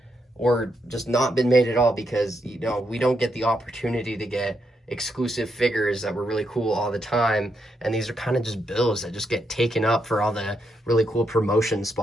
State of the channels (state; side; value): normal; both; correlation 0.80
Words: or just not been made at all, because, you know, we don't get the opportunity to get exclusive figures that were really cool all the time. And these are kind of just bills that just get taken up for all the really cool promotion